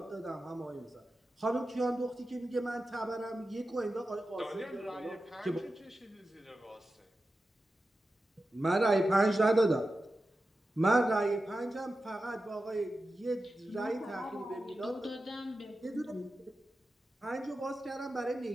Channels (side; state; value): both; normal; correlation 0.92